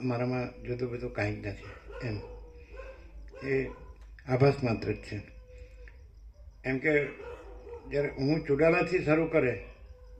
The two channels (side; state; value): both; identical; correlation 1.00